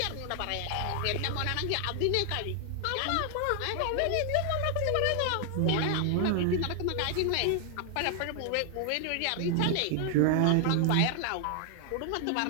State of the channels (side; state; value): both; different; correlation 0.00